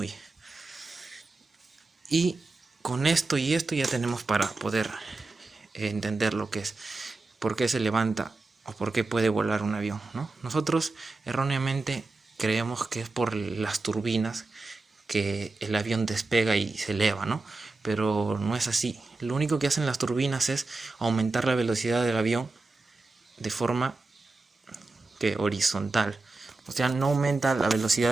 Y con esto y esto ya tenemos para poder entender lo que es, por qué se levanta o por qué puede volar un avión, ¿no? Nosotros erróneamente creemos que es por las turbinas que el avión despega y se eleva, ¿no? Pero no es así. Lo único que hacen las turbinas es aumentar la velocidad del avión de forma que horizontal. O sea, no aumenta la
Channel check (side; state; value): left; quieter; 3.4 dB